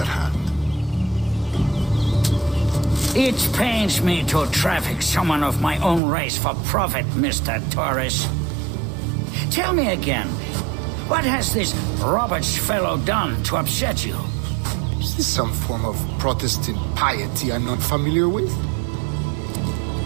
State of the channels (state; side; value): drops out; left; at 6.0 s